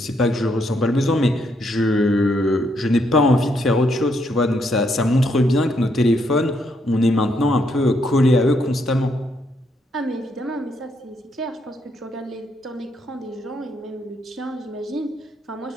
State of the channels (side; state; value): both; normal; correlation 0.75